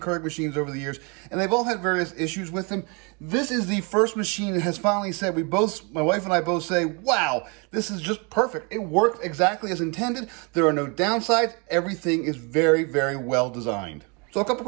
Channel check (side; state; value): left; quieter; 32.3 dB